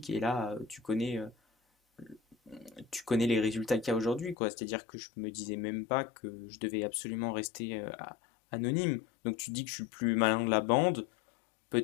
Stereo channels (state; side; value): drops out; right; at 4.4 s